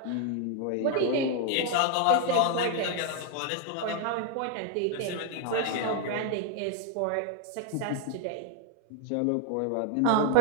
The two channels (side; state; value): both; different; correlation 0.00